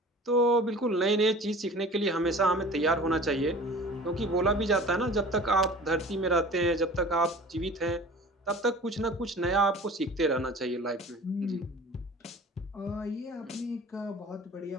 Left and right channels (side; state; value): both; normal; correlation 0.43